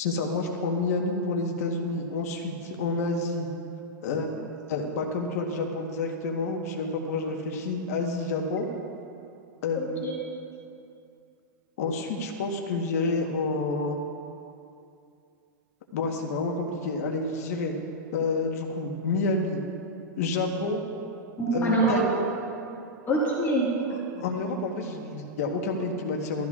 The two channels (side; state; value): both; normal; correlation -0.10